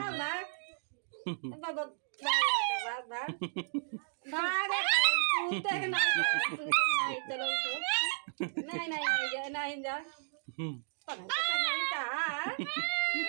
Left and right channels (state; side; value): silent; left; digital silence